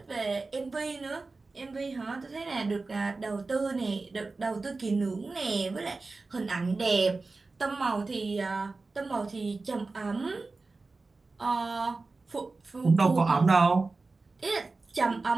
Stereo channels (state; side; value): quieter; left; 3.7 dB